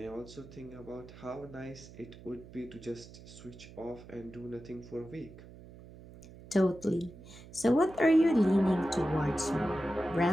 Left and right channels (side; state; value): right; noise; hum, 18 dB below the sound